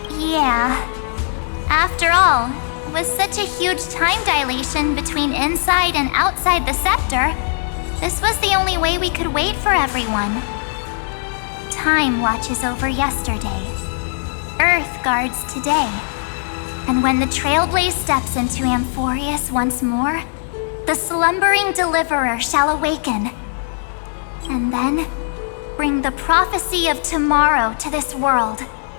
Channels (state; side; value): silent; right; digital silence